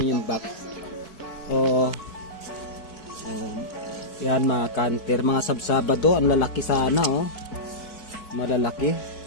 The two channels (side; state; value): right; late; 4.6 ms